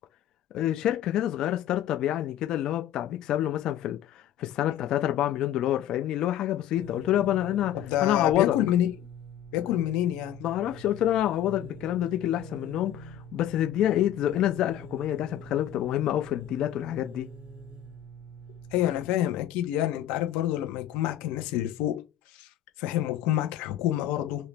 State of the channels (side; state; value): right; quieter; 11.7 dB